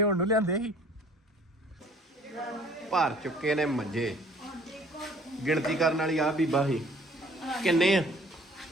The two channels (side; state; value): both; normal; correlation 0.54